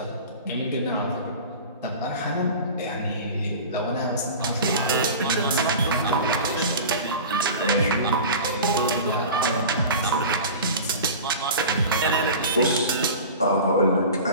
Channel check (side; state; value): both; inverted; correlation -0.34